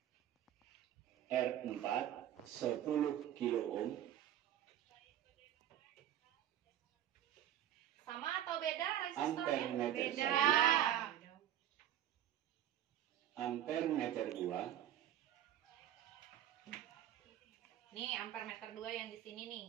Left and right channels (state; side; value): quieter; left; 11.3 dB